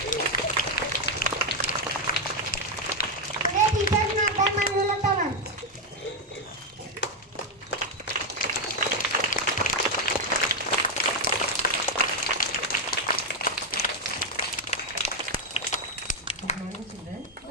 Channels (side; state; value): both; normal; correlation 0.03